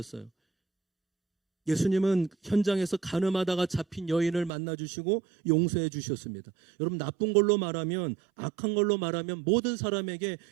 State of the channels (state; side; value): drops out; left; at 4.5 s